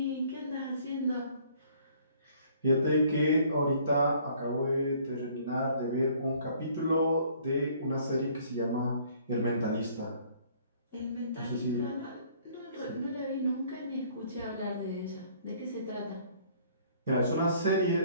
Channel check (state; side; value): inverted; both; correlation -0.59